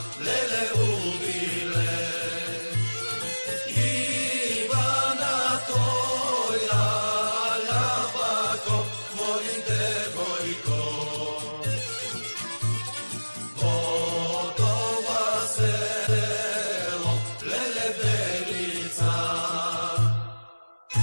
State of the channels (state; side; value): inverted; both; correlation -1.00